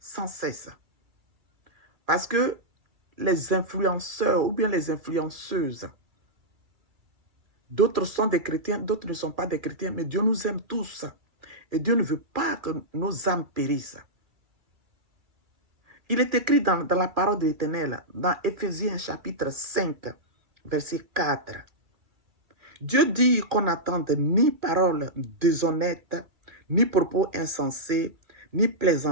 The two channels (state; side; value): late; left; 2.3 ms